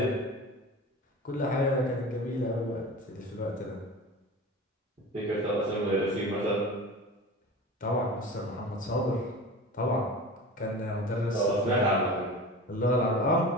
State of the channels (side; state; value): both; normal; correlation 0.34